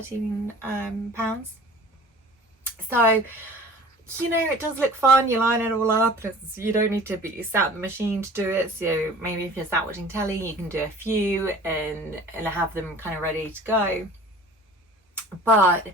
pounds. So, you know, it does look fun. You line it all up. You don't need to be sat at the machine to do it. So maybe if you're sat watching telly, you can do a few and have them kind of ready to go.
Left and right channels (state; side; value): normal; both; correlation 0.44